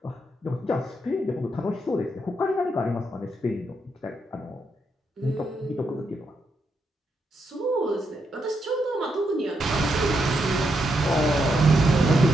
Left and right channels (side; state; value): both; normal; correlation 0.81